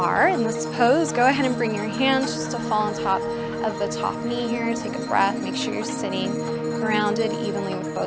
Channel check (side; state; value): both; identical; correlation 1.00